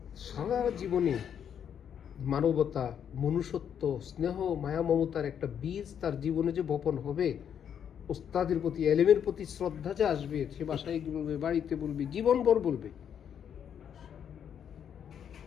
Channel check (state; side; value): quieter; right; 8.5 dB